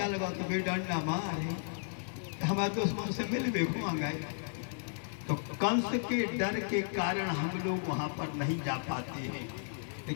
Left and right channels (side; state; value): right; silent; 55 dB below the other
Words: गया तो वे डंडा मारे, हमारे दुश्मन से मिलवे हुआ गए। तो कंस के डर के कारण हम लोग वहां पर नहीं जा पाते हैं।